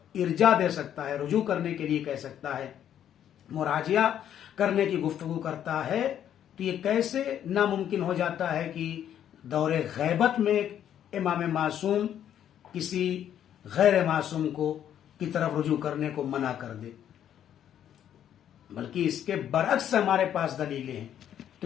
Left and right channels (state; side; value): quieter; right; 10.1 dB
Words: ارجاع دے سکتا ہے، رجوع کرنے کے لیے کہہ سکتا ہے، مراجعہ کرنے کی گفتگو کرتا ہے، تو یہ کیسے ناممکن ہو جاتا ہے کہ دور غیبت میں امام معصوم کسی غیر معصوم کو کی طرف رجوع کرنے کو منع کر دے؟ بلکہ اس کے برعکس ہمارے پاس دلیلیں ہیں.